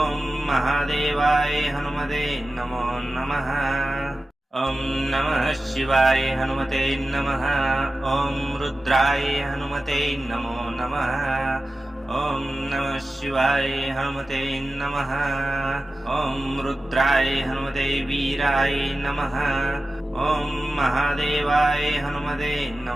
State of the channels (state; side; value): normal; both; correlation 0.94